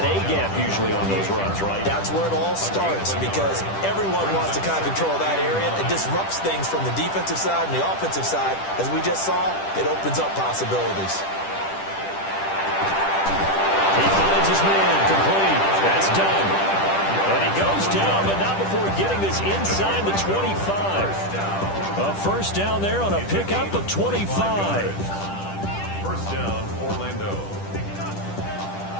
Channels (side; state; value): right; late; 10 ms